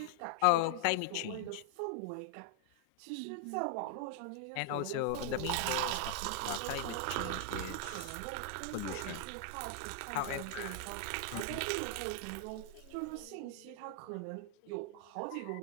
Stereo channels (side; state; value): both; different; correlation 0.00